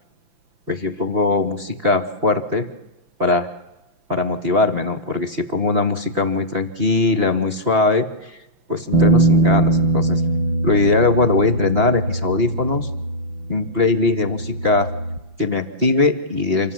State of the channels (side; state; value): left; late; 5.9 ms